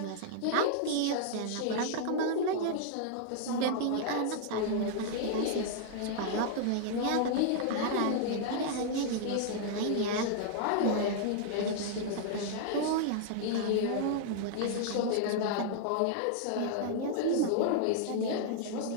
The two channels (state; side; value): different; both; correlation -0.01